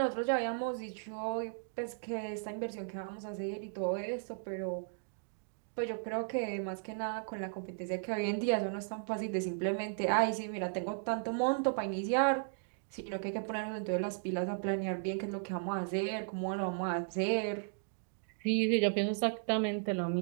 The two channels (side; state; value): left; silent; digital silence